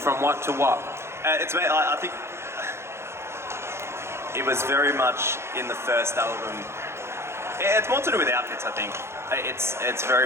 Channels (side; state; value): left; late; 0.13 ms